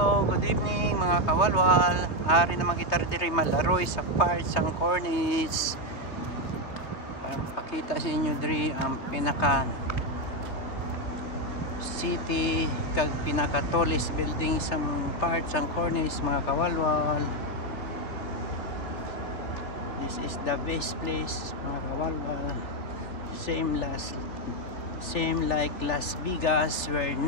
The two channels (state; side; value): late; right; 3.5 ms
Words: good evening mga kawalwal. Ari naman kita diri malaroy sa part sang cornice. Para pakita sa inyo diri ang pinaka city kag pinaka tallest building sa part sang cornice mga kawalwal. This is the best place mga kawalwal. Same like Las Vegas where